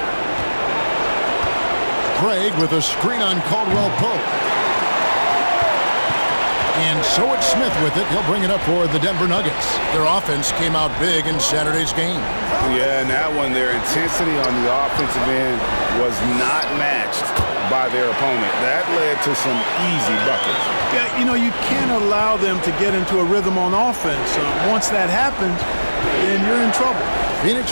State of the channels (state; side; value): inverted; both; correlation -1.00